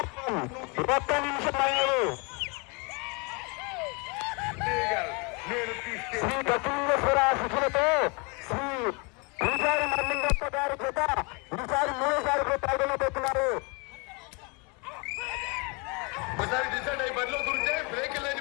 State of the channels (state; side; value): quieter; right; 30.8 dB